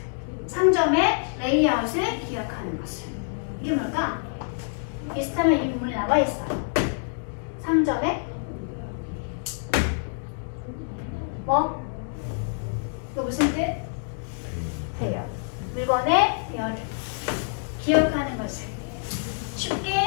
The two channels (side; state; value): right; silent; digital silence